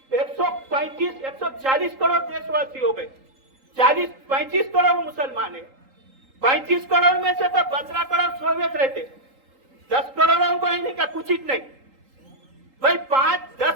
140 करोड़ देशवासी हो गए, 35 करोड़ मुसलमान है। 35 करोड़ में से तो 15 करोड़ सोवियत रहते, 10 करोड़ों को नहीं का कुछ ही नहीं। भाई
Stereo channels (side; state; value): left; late; 3.8 ms